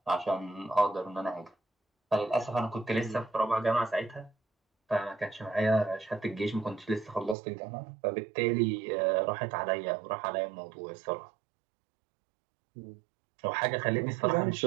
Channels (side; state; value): left; drops out; at 7.4 s